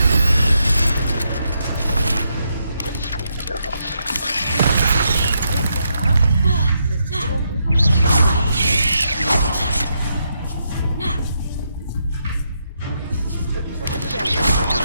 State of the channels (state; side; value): inverted; both; correlation -0.80